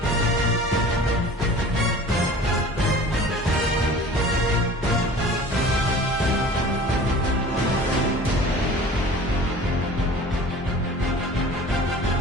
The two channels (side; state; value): both; normal; correlation 0.43